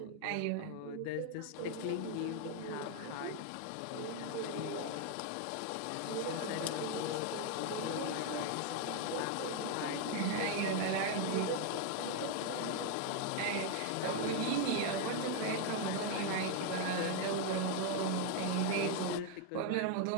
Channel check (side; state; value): both; different; correlation 0.00